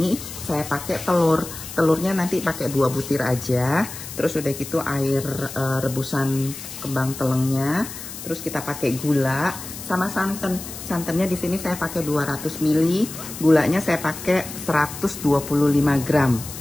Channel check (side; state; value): left; noise; hiss, 11 dB below the sound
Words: saya pakai telur. Telurnya nanti pakai 2 butir aja. Terus udah gitu air rebusan kembang telengnya. Terus kita pakai gula sama santan. Santannya di sini saya pakai 200 ml. Gulanya saya pakai 125 gram.